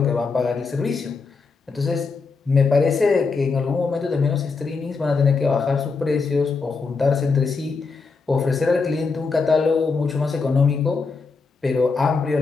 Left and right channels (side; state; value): right; quieter; 4.5 dB